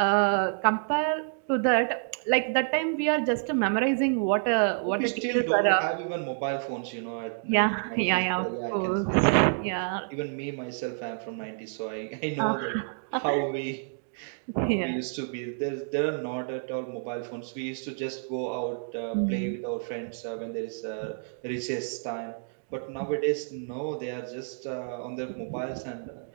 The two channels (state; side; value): silent; left; digital silence